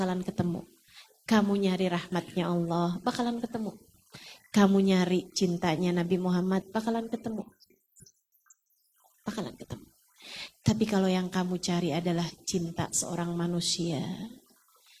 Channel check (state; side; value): identical; both; correlation 1.00